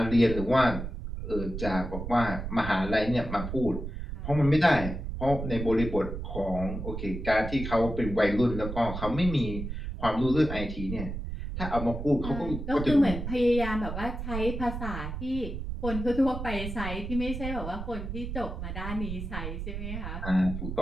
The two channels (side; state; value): right; noise; rumble, 6 dB below the sound